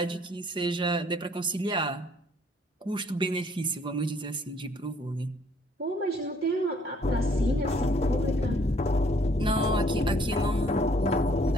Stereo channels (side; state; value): both; normal; correlation 0.62